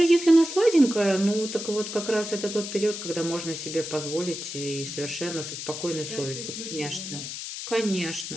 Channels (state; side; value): noise; left; hiss, 7 dB below the sound